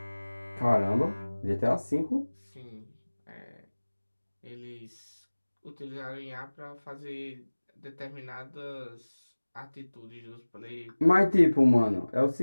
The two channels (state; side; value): inverted; both; correlation -1.00